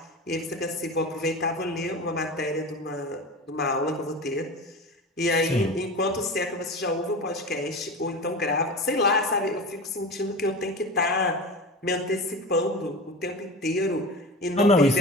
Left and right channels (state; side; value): normal; both; correlation 0.30